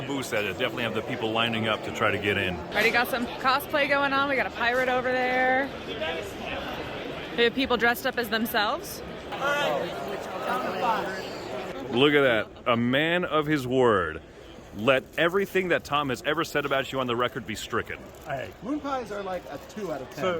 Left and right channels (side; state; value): both; identical; correlation 1.00